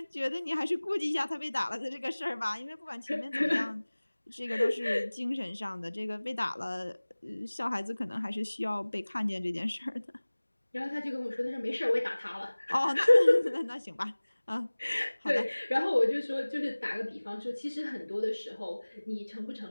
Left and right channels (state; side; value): inverted; both; correlation -1.00